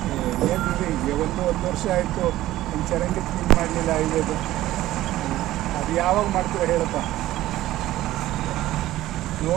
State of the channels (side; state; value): left; quieter; 15.2 dB